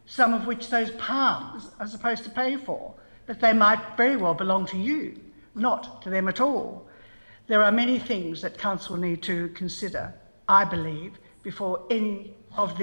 some of which those palms are supposed to pay for, but they might very well belong to you, not to them at all. There are many things that council need to consider, I believe, before any of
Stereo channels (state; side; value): inverted; both; correlation -1.00